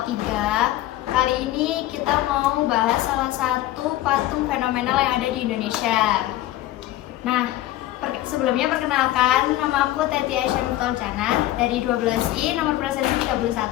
3. Kali ini kita mau bahas salah satu patung fenomenal yang ada di Indonesia. Nah, sebelumnya perkenalkan, nama aku Teti Aisyah Muftoljana dari 12I, nomor presensi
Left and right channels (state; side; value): quieter; right; 15.1 dB